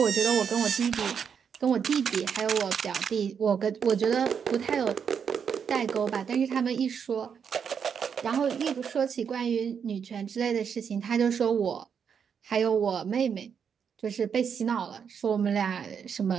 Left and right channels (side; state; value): left; quieter; 7.1 dB